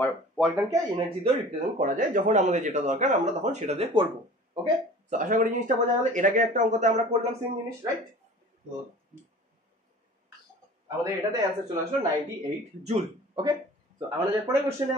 ওয়ার্ক ডানকে এনার্জি দিয়ে রিপ্রেজেন্ট করা যায়, যখন আমাদের যেটা দরকার আমরা তখন সেটা দিয়ে করব। ওকে, তো আশা করি জিনিসটা বোঝা গেল। এর আগে একটা অঙ্কতে আমরা করলাম সেম জিনিস, রাইট। তো আমাদের এটাতে অ্যানসার চলে আসলো 98 জুল। ওকে, তো আমরা যে পরের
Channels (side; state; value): both; normal; correlation 0.43